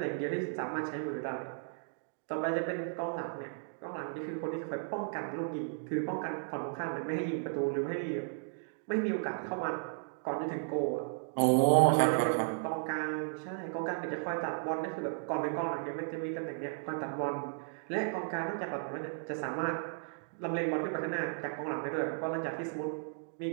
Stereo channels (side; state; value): left; silent; digital silence